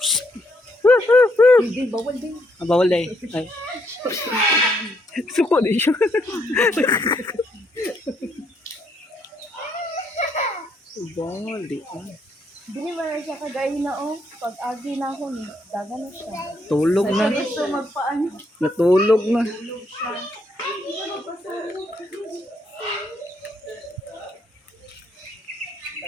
Hindi, bawal din. Bawal day. Ay. Suko din siya. Bawal di. Dili ba na siya kagaya na oh. Pag agi na ako ni, daga na siya. Tulog na. Ito magpaano. Natulog na.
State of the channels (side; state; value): both; normal; correlation 0.74